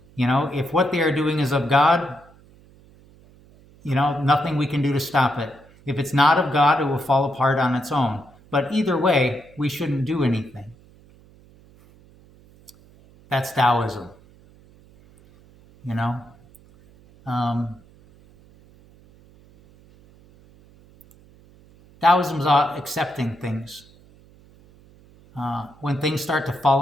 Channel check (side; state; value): right; noise; hum, 27 dB below the sound